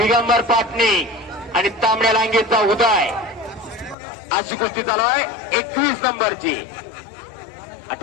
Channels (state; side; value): drops out; right; at 4.0 s